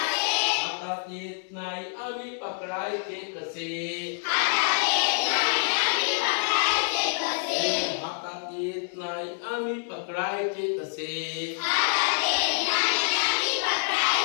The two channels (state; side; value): silent; right; digital silence